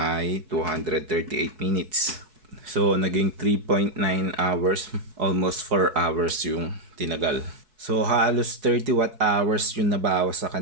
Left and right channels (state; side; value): late; left; 4.6 ms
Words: 238 minutes. So, naging 3.9 hours, almost 4 hours yung tinagal. So, halos 30 watt hours yung nabawas sa